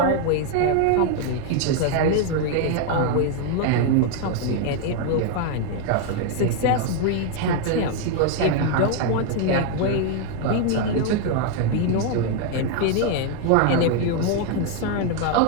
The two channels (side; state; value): both; different; correlation 0.00